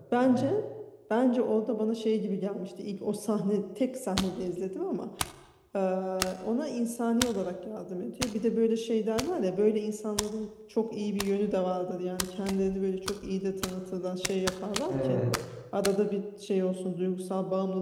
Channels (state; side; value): identical; both; correlation 1.00